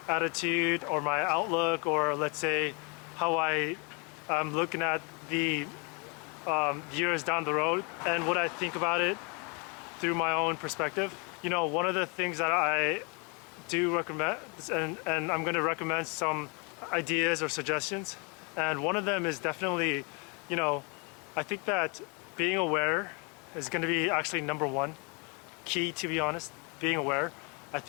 attitude or my outlook, or let's say how I'm looking at the years down the road and what I think about it through my own perspective. One of the things that I do recommend, and I'm going to recommend some ideas or suggestions, and one of them is definitely, I think that being aware is going to be actually number one key, to be honest. Being aware. I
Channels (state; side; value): quieter; right; 32.6 dB